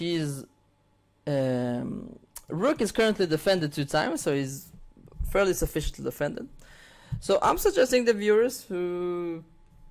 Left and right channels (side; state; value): both; identical; correlation 1.00